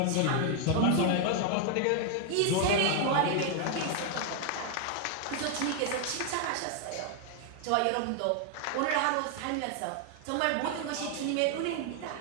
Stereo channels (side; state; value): both; different; correlation 0.00